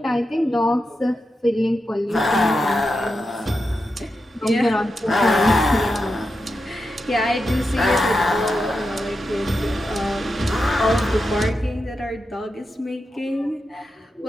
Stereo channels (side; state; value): both; normal; correlation 0.88